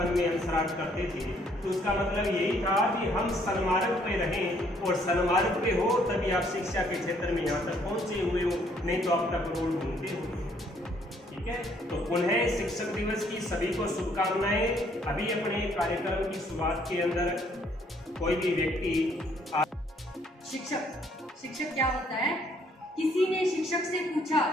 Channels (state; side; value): normal; both; correlation 0.65